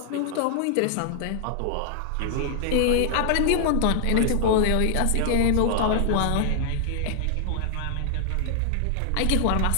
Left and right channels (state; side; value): different; both; correlation -0.01